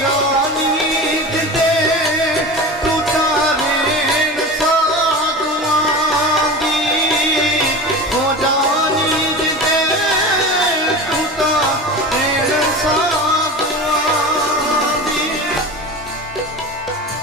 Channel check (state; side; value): normal; both; correlation 0.31